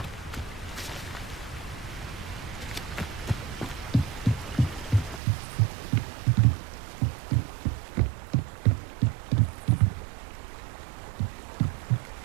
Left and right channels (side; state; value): left; drops out; at 5.2 s